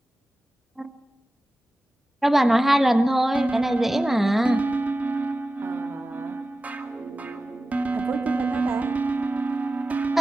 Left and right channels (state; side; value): normal; both; correlation 0.95